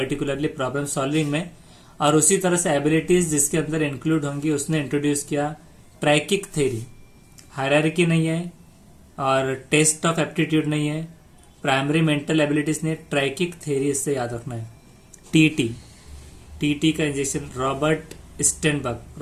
प्रॉब्लम सॉल्विंग में, और उसी तरह से एबिलिटीज जिसके अंदर इंक्लूड होंगी उसने इंट्रोड्यूस किया ट्रैकिक थ्योरी। हायरार्की नहीं है और टेस्ट ऑफ एप्टीट्यूड नहीं है, प्राइमरी मेंटल एबिलिटीज ने, ट्रैकिक थ्योरी इससे याद रखना है। टी का इंजेक्शन, रॉबर्ट स्टेनबर्ग,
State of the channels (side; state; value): both; identical; correlation 1.00